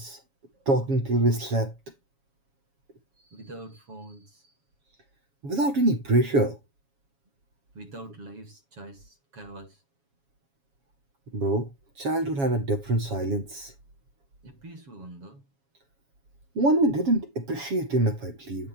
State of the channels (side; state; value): left; late; 7.2 ms